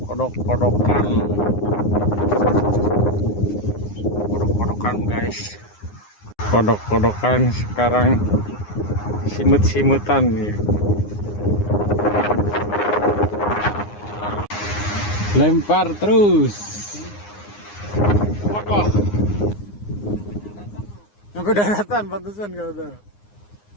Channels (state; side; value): late; right; 9.7 ms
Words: kodok-kodokan guys, kodok-kodokan sekarang simut-simutan nih. Lempar terus. Wah, sampai daratan pantesan kata.